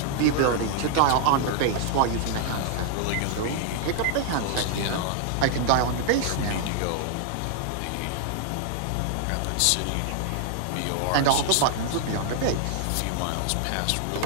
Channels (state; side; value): different; both; correlation 0.00